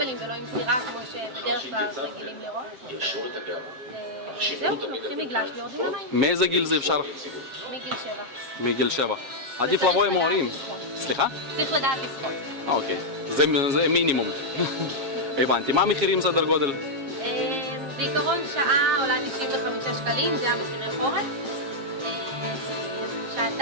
ולא עם סירה כמו שבדרך כלל רגילים לראות. זהו, לוקחים מגלש ויורדים למים. מאיזה גיל זה אפשר? מגיל 7. מגיל 7. עדיף לבוא עם ההורים. סליחה? צריך לדעת לשחות. אוקיי, זה מינימום. הבנתי. מה המחירים סדר גודל? בעיקרון שעה עולה 95 שקלים, זה המחירי חורף.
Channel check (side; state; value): left; late; 7.3 ms